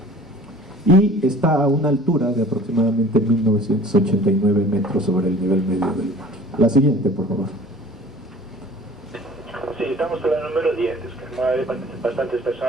y está a una altura de aproximadamente 1989 metros sobre el nivel medio del mar. La siguiente, por favor. Sí, estamos en la número 10, es que hay bastantes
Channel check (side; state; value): both; normal; correlation 0.47